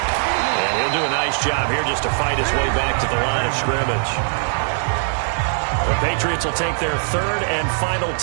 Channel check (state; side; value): silent; left; digital silence